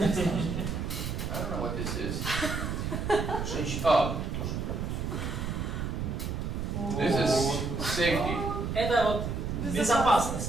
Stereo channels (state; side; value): noise; right; rumble, 3 dB below the sound